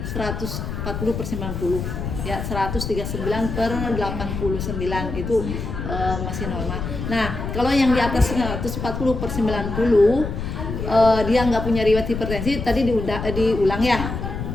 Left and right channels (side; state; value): left; noise; rumble, 5 dB below the sound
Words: 140/90 ya 139/89 itu masih normal. Nah kalau yang di atas 140/90 dia nggak punya riwayat hipertensi, tadi diulang ya,